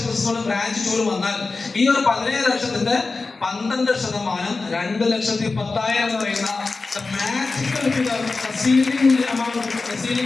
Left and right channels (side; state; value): right; quieter; 3.9 dB